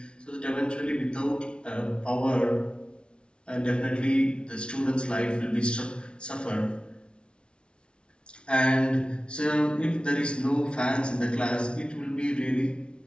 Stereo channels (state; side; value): late; right; 0.057 ms